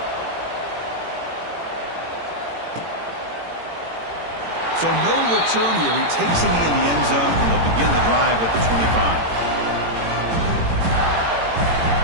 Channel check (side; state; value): left; late; 18 ms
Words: So no return here. He takes it in the end zone, and they'll begin the drive at the 25.